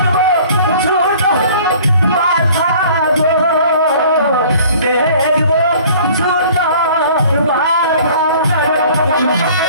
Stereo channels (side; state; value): both; inverted; correlation -0.50